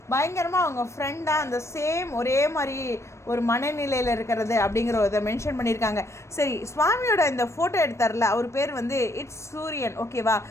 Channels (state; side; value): late; right; 0.13 ms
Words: பயங்கரமாக அவங்க ஃப்ரெண்டாக அந்த சேம் ஒரே மாதிரி ஒரு மனநிலையில் இருக்கிறது அப்படிங்கிற இதை மென்ஷன் பண்ணியிருக்காங்க. சரி, சுவாமியோட இந்த ஃபோட்டோ எடுத்தார்ல, அவர் பேர் வந்து இட்ஸ் சூரியன், ஓகேவா?